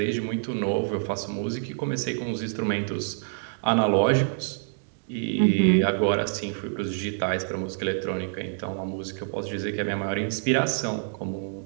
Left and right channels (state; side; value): silent; left; 60 dB below the other